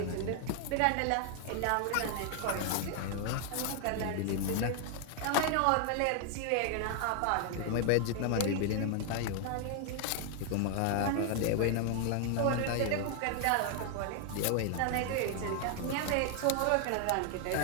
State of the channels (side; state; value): both; different; correlation 0.00